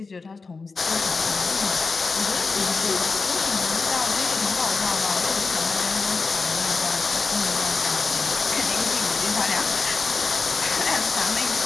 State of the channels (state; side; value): quieter; right; 4.3 dB